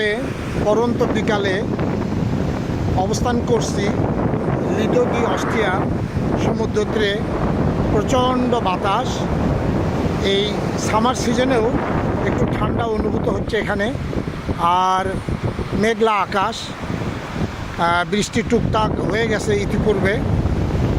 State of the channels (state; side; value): identical; both; correlation 1.00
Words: পরন্ত বিকালে অবস্থান করছি লিডো ডি অস্ট্রিয়া সমুদ্র তীরে। প্রচণ্ড বাতাস, এই সামার সিজনেও একটু ঠান্ডা অনুভূত হচ্ছে এখানে, আর মেঘলা আকাশ, বৃষ্টি টুকটাক হয়ে গেছে ইতিপূর্বে।